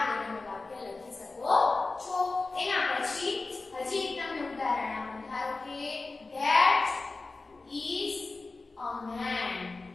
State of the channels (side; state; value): right; quieter; 3.6 dB